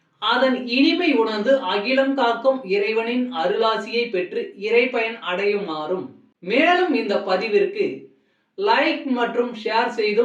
அதன் இனிமை உணர்ந்து அகிலம் காக்கும் இறைவனின் அருளாசியை பெற்று இறைப்பயன் அடையுமாறும், மேலும் இந்த பதிவிற்கு லைக் மற்றும் ஷேர்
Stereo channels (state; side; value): identical; both; correlation 1.00